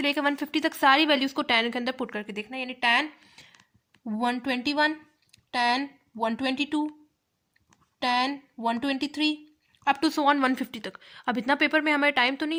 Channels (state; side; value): identical; both; correlation 1.00